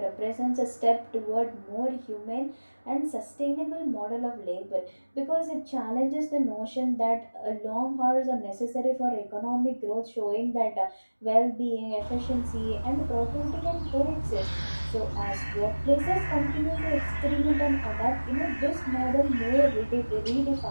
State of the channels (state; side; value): inverted; both; correlation -1.00